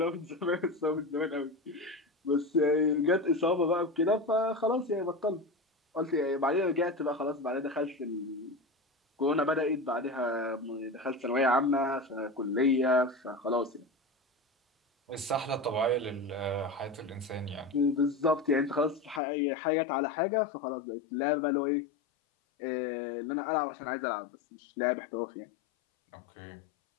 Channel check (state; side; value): drops out; right; at 19.2 s